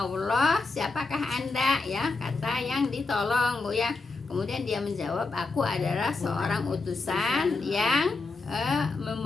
siapakah Anda ya, kata yang ditolong Bu ya. Kemudian dia menjawab, aku adalah seorang utusan yang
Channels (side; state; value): right; quieter; 3.8 dB